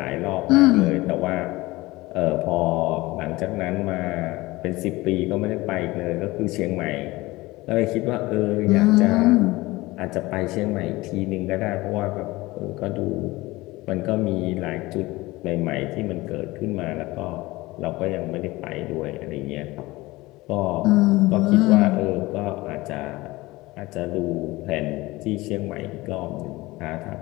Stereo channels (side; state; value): right; quieter; 20.3 dB